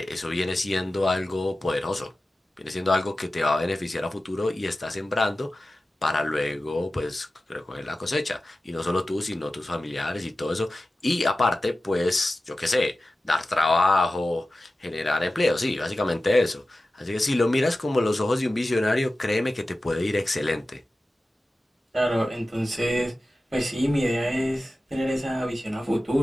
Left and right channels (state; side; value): normal; both; correlation 0.95